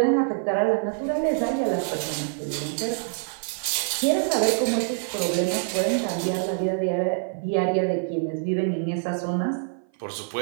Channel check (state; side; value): silent; left; 56 dB below the other